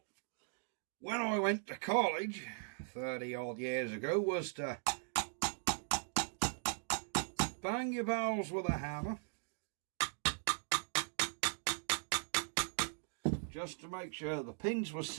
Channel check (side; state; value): left; silent; digital silence